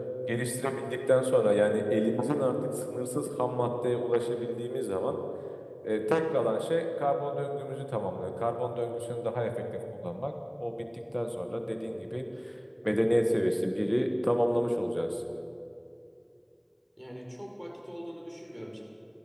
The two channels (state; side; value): identical; both; correlation 1.00